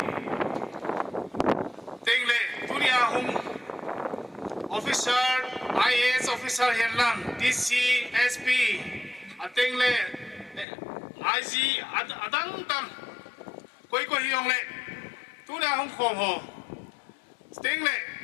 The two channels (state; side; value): drops out; right; at 10.7 s